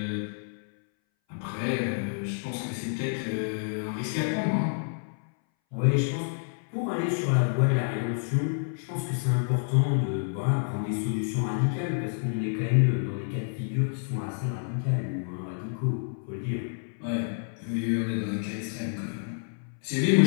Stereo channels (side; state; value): right; silent; 59 dB below the other